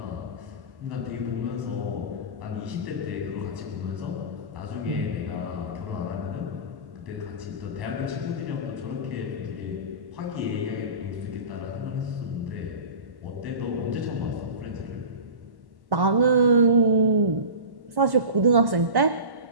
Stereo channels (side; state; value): left; late; 1.1 ms